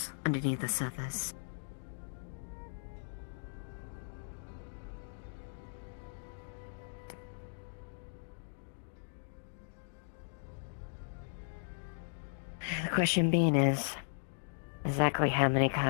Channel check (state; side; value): silent; right; digital silence